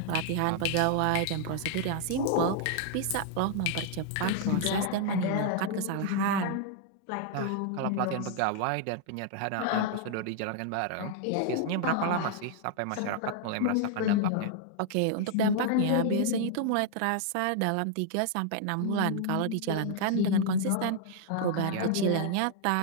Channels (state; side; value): different; both; correlation 0.00